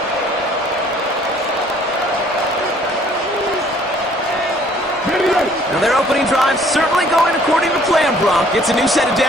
Now their opening drive certainly going according to plan, Brock. It's a new set of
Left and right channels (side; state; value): both; normal; correlation 0.59